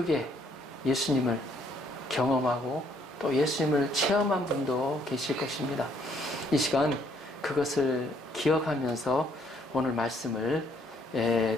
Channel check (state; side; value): normal; both; correlation 0.67